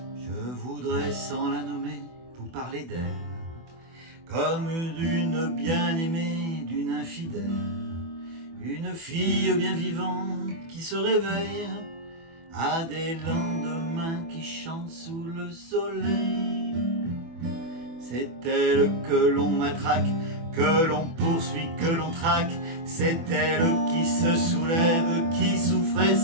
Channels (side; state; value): left; late; 24 ms